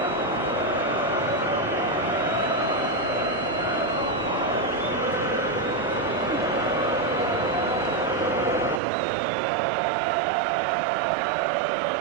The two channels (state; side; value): drops out; left; at 8.8 s